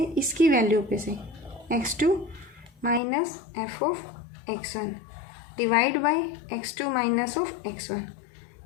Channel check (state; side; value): drops out; right; at 3.0 s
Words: इसकी वैल्यू पे से x2 minus f of x1 divide by x2 minus of x1।